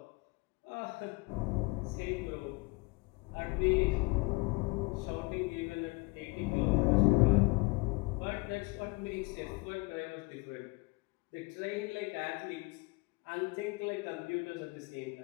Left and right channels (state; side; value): quieter; right; 26.6 dB